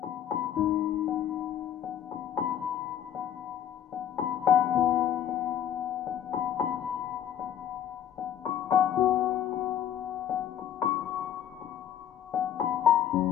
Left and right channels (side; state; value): right; quieter; 10.0 dB